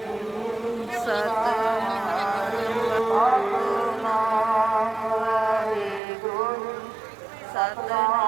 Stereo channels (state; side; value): drops out; left; at 6.0 s